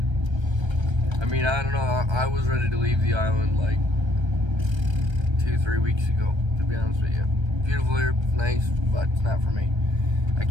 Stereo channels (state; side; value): late; left; 1.3 ms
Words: I mean, I don't know, I was ready to leave the island like 2-3 weeks ago, to be honest with you. Beautiful here, nice, but it's not for me. I